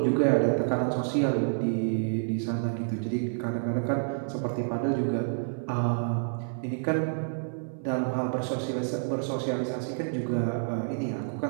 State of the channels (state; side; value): silent; left; 59 dB below the other